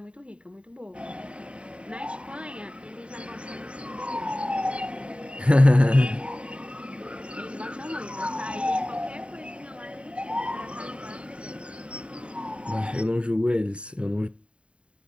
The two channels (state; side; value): late; left; 0.059 ms